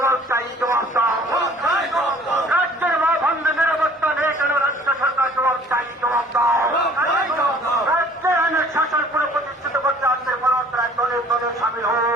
চাই, জবাব দাও। রাজ্যের মা বন্ধে নিরাপত্তা নেই কেন রাজ্য সরকার জবাব চাই, জবাব দাও। রাজ্যের আইনের শাসন পুরো প্রতিষ্ঠিত করতে আজকে পুরোদরায় দলে দলে সামিল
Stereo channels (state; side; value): normal; both; correlation 0.53